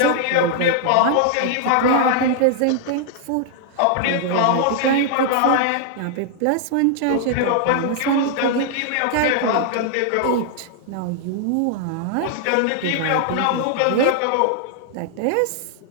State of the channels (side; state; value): both; different; correlation 0.00